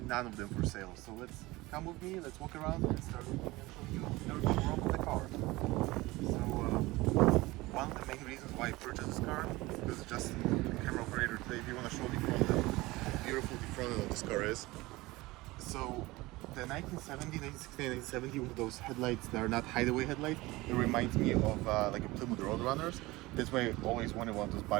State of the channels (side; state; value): left; quieter; 20.6 dB